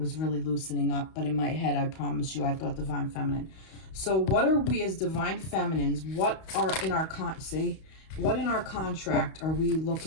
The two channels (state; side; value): late; right; 32 ms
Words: really loosening up. But in my head, I promise you, I thought divine feminine. So what are we as divine feminines? What are in our what in our contract are we